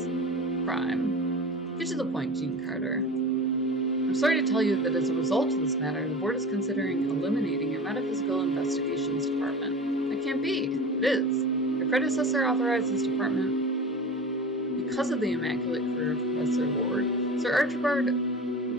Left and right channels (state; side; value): normal; both; correlation 0.34